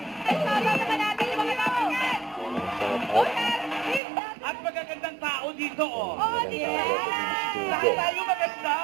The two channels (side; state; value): left; drops out; at 4.0 s